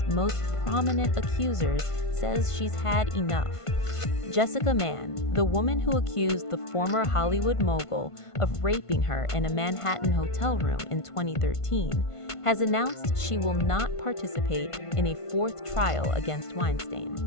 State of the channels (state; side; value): late; right; 1.5 ms